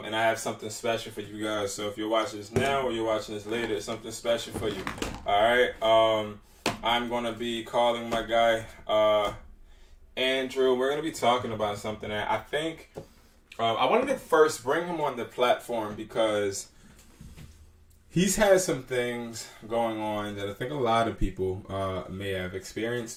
and I have something special for you guys. So if you're watching this now or you're watching this later, it's something special for you. All right. I'm gonna be calling my guy Andrew. We're gonna be talking about something that I think I wanted to first bring him on the platform because he's had some things going on that I think a lot of people may have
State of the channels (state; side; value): identical; both; correlation 1.00